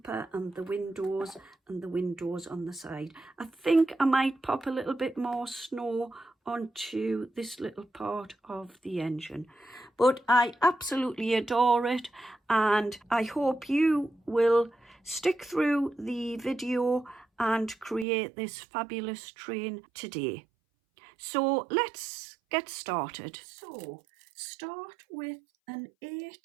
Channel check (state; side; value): drops out; left; at 18.1 s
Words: and the windows on the side. I think I might pop a little bit more snow onto this little part of the engine, but I absolutely adore it, and I hope you will stick through the video and create this fabulous train today. So let's get started. So start with an